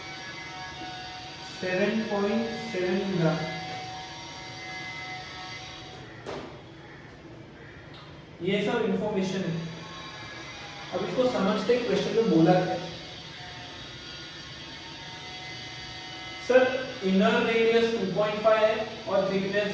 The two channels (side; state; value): both; identical; correlation 1.00